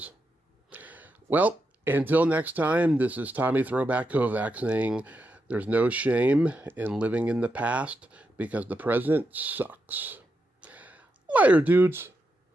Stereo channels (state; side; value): normal; both; correlation 0.85